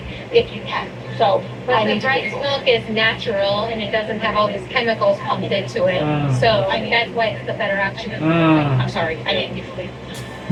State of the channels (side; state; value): both; identical; correlation 1.00